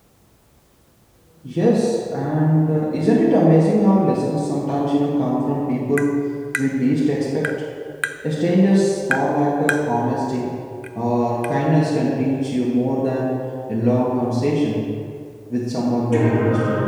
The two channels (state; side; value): identical; both; correlation 1.00